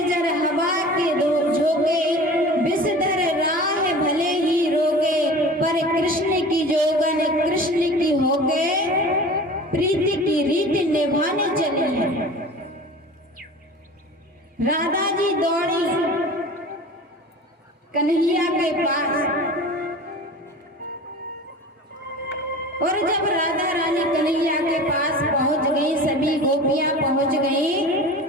हवा के दो झोंके, विषधर राह भले ही रोके, पर कृष्ण की जोगन कृष्ण की होके, प्रीति की रीति निभाने चली है। राधा जी दौड़ी कन्हैया के पास, और जब राधा रानी कन्हैया के पास पहुंच गई, सभी गोपियां पहुंच गई,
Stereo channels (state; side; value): normal; both; correlation 0.38